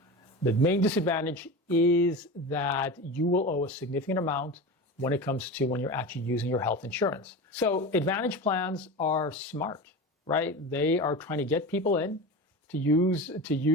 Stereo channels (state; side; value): normal; both; correlation 0.28